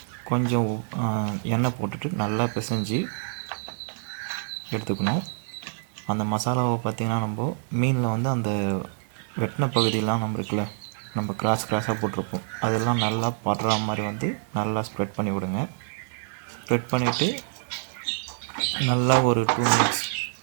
கொஞ்சம் எண்ணெய் போட்டுட்டு நல்லா பிசைஞ்சு எடுத்துக்கணும். அந்த மசாலாவை பார்த்திங்கன்னா நம்ம மீனில் வந்து அந்த வெட்டின பகுதியெலாம் நம்ம கிராஸாக போட்டிருப்போம், அதெல்லாம் நல்லா படுற மாதிரி வந்து நல்லா ஸ்ப்ரெட் பண்ணி விடுங்க. ஸ்ப்ரெட் பண்ணிவிட்டு நல்லா ஒரு 2 மினிட்ஸ்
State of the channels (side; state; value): left; silent; digital silence